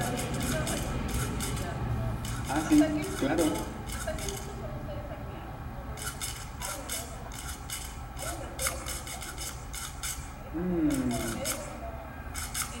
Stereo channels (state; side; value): identical; both; correlation 1.00